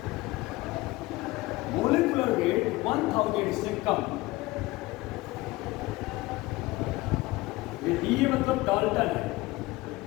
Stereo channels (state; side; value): quieter; right; 20.3 dB